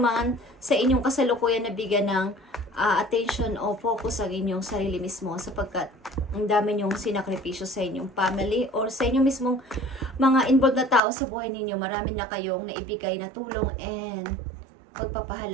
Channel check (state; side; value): drops out; left; at 11.0 s